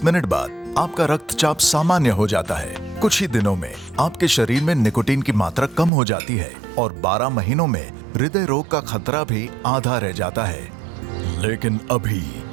मिनट बाद आपका रक्तचाप सामान्य हो जाता है। कुछ ही दिनों में आपके शरीर में निकोटीन की मात्रा कम हो जाती है और 12 महीनों में हृदय रोग का खतरा भी आधा रह जाता है। लेकिन अभी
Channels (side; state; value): left; drops out; at 5.9 s